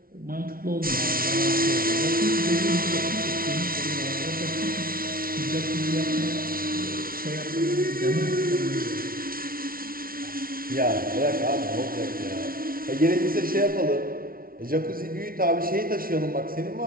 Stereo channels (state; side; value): late; left; 0.43 ms